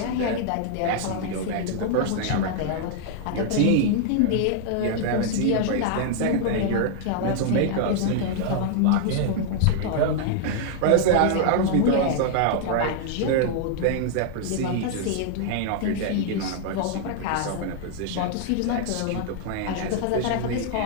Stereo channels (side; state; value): both; different; correlation 0.00